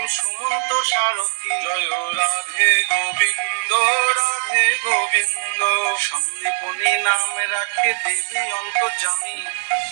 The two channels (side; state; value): left; silent; 59 dB below the other